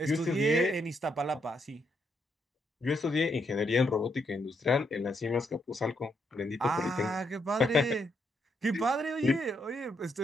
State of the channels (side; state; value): both; normal; correlation 0.77